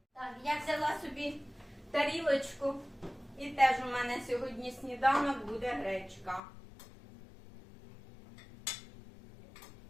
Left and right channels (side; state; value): right; drops out; at 6.4 s